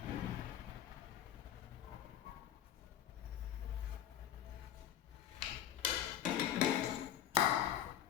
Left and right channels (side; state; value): right; quieter; 10.8 dB